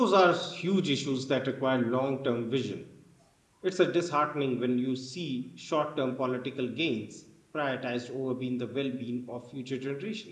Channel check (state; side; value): identical; both; correlation 1.00